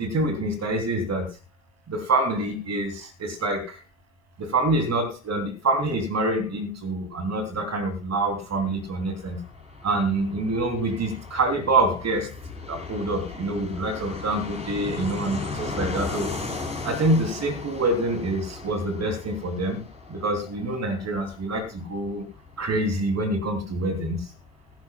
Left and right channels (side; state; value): both; normal; correlation 0.22